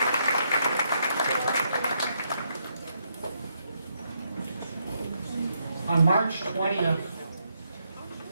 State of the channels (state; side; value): inverted; both; correlation -0.77